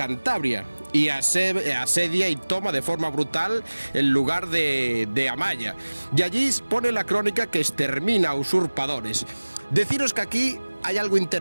y asedia y toma de forma brutal el lugar de Amaya. Y allí pone la crónica que extermina a usurpadores. Deciros que aquí hay algo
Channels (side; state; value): both; inverted; correlation -1.00